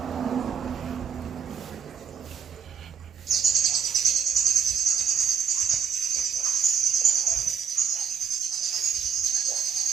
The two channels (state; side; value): quieter; left; 7.3 dB